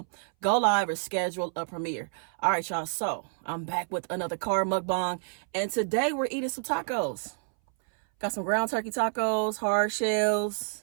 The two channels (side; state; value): left; silent; 59 dB below the other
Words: go live, or schedule a premiere. All right, y'all. So I'm back with another car mukbang. And today we're eating some tacos. Got some ground turkey tacos, hard shells.